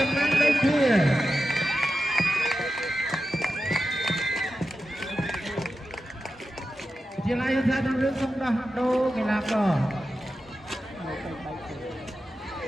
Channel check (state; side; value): normal; both; correlation 0.91